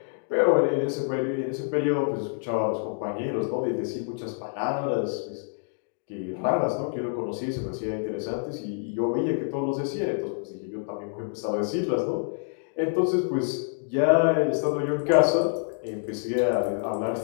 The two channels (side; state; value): right; silent; digital silence